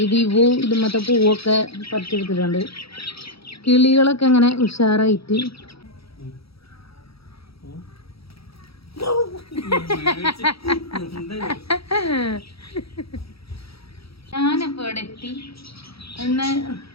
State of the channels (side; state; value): right; late; 0.76 ms